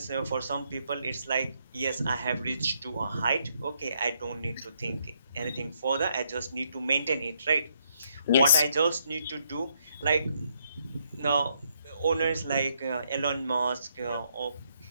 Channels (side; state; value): both; inverted; correlation -0.74